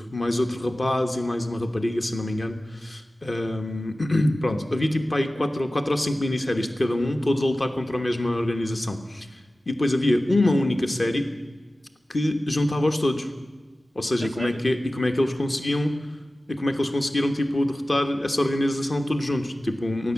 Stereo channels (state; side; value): normal; both; correlation 0.96